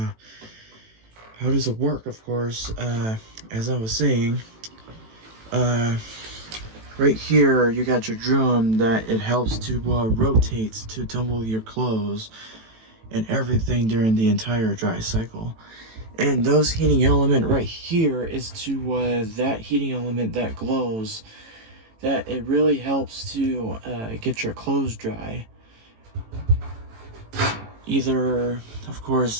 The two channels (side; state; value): left; late; 18 ms